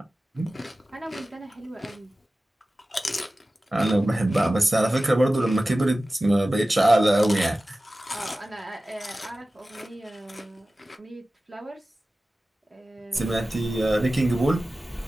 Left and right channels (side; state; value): both; normal; correlation 0.96